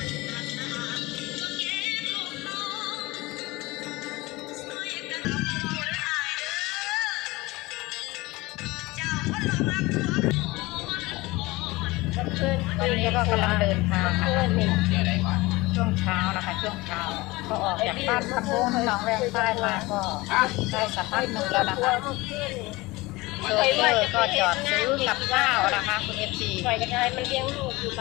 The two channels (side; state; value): right; quieter; 21.4 dB